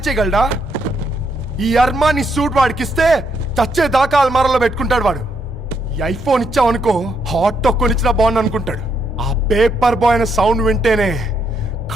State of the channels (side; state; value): both; normal; correlation 0.76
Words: చేయగలడా? ఈ అర్మాని సూట్ వాడికి ఇస్తే చచ్చే దాకా అల్మారాలో పెట్టుకుంటాడు వాడు. ఈ ఐఫోన్ ఇచ్చావనుకో హాట్ టొక్కుని ఇచ్చినా బాగుంది అనుకుంటాడు. ఆ పేపర్ బాయ్ అనే సౌండ్ వింటేనే